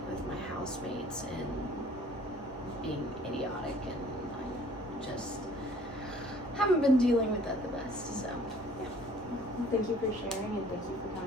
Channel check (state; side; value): normal; both; correlation 0.54